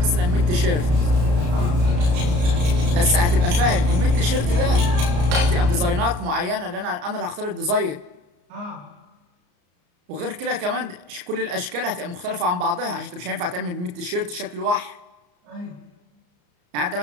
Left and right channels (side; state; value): left; late; 34 ms